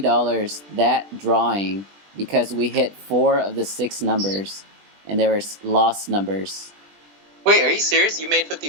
that drawing because we hit 4 of the 6 numbers, and they were Lost numbers. Wait, are you serious? You made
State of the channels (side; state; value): left; late; 20 ms